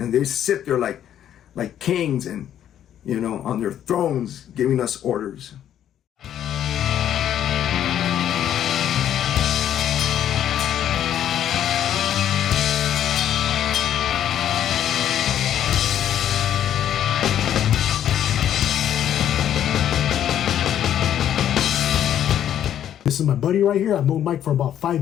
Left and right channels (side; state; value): right; quieter; 10.5 dB